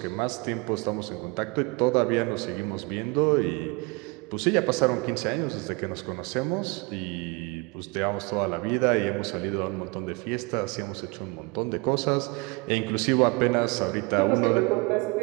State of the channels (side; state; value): left; quieter; 27.8 dB